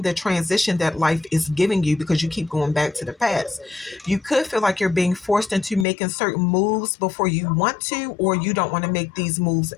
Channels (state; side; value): drops out; right; at 5.9 s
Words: the transition that life is giving you because you keep going back to the past. You could feel like you're being forced into making certain moves before you want to, or you don't want to make these moves